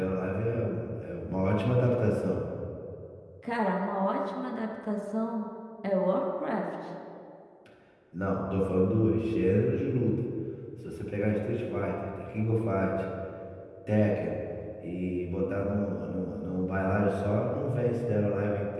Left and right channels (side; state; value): both; identical; correlation 1.00